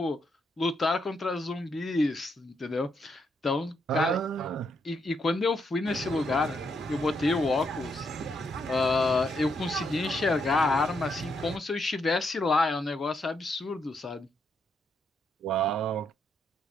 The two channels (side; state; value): both; normal; correlation 0.78